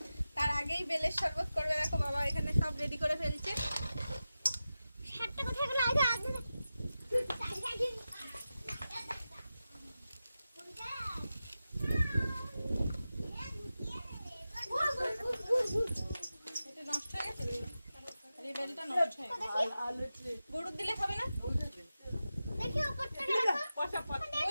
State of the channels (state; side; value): inverted; both; correlation -0.93